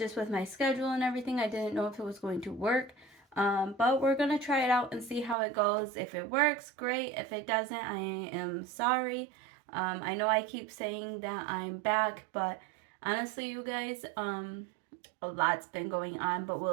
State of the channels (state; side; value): drops out; left; at 5.4 s